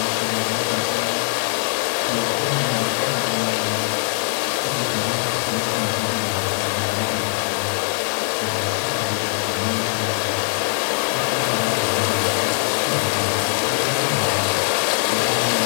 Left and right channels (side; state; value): right; silent; digital silence